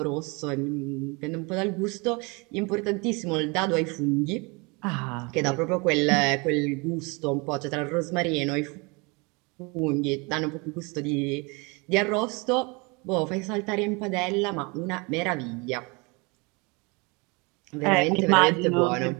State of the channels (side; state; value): left; quieter; 28.8 dB